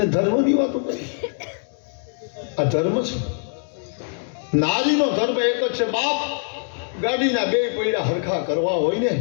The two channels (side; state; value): right; silent; digital silence